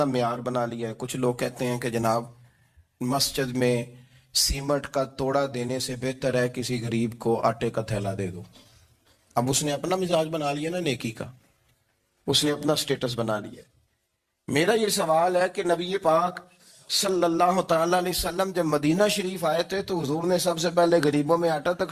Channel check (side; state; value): both; identical; correlation 1.00